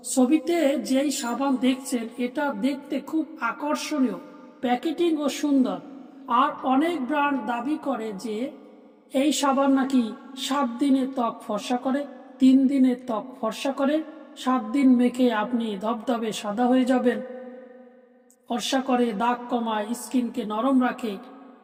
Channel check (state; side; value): identical; both; correlation 1.00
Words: ছবিতে যেই সাবান দেখছেন এটা দেখতে খুব আকর্ষণীয়, প্যাকেটিং ও সুন্দর। আর অনেক ব্র্যান্ড দাবি করে যে এই সাবান নাকি 7 দিনে ত্বক ফর্সা করে, 3 দিনে ত্বক ফর্সা করে, 7 দিন মেখে আপনি ধবধবে সাদা হয়ে যাবেন, ফর্সা করে, দাগ কমায়, স্কিনকে নরম রাখে।